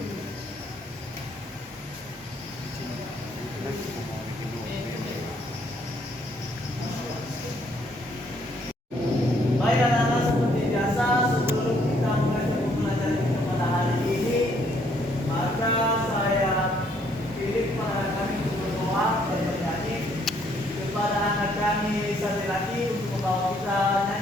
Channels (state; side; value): normal; both; correlation 0.67